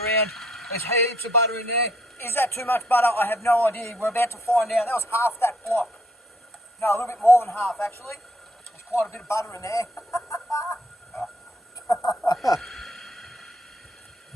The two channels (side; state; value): both; normal; correlation 0.68